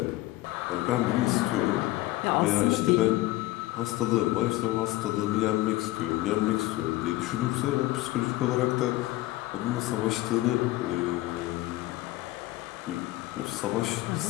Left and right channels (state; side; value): quieter; right; 17.8 dB